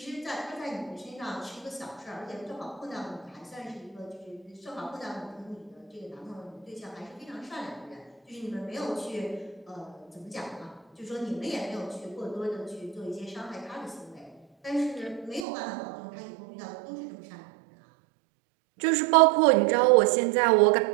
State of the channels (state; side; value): drops out; left; at 15.5 s